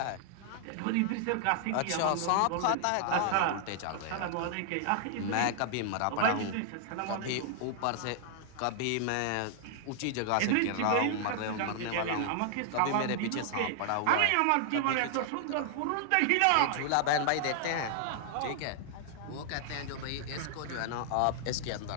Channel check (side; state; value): both; different; correlation -0.01